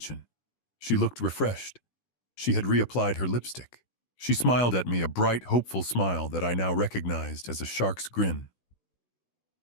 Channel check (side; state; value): right; late; 16 ms